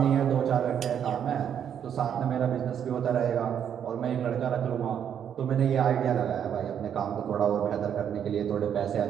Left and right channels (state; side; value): quieter; left; 8.8 dB